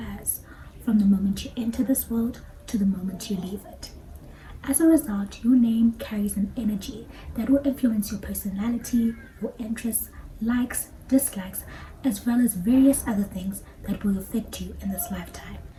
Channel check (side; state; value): both; identical; correlation 1.00